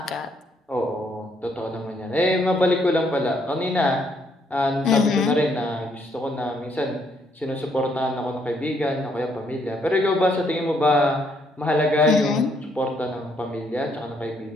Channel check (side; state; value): both; normal; correlation 0.71